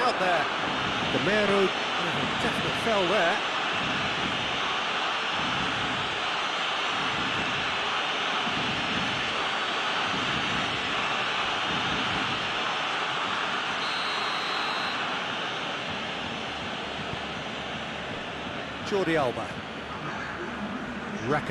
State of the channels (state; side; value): identical; both; correlation 1.00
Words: out there. Gamero, definitely fell there. Jordi Alba.